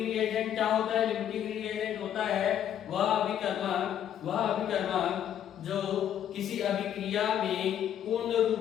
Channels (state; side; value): quieter; right; 10.1 dB